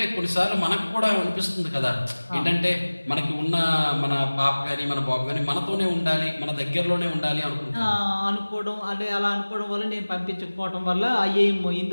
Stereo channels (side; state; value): both; inverted; correlation -1.00